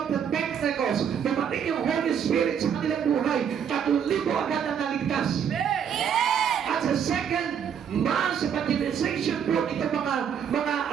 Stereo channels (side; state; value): left; quieter; 8.0 dB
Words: the Pentecost. Dumating yung Holy Spirit sa kanilang buhay. 3,000 agad na naligtas. At sa second mass evangelization po, ito mga